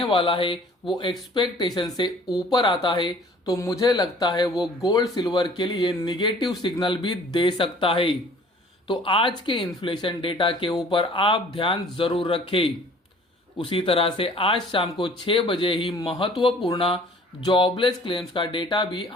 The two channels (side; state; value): both; normal; correlation 0.52